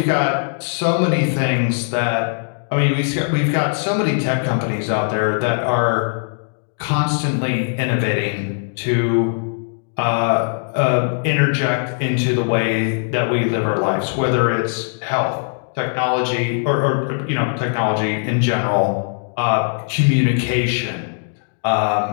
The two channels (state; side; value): silent; right; digital silence